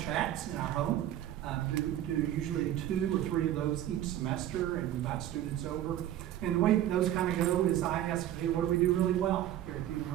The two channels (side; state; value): left; quieter; 12.3 dB